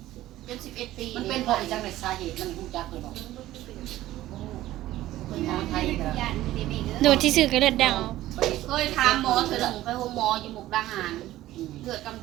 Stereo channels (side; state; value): left; quieter; 15.1 dB